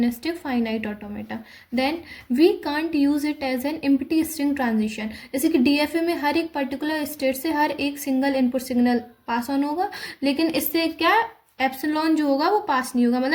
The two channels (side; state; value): both; identical; correlation 1.00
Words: finite automata. Then we can't use it as an empty string transition. जैसे कि DFA में हर एक particular state से हर एक single input signal pass on होगा, लेकिन इससे क्या एप्सिलॉन जो होगा वो पास नहीं होगा,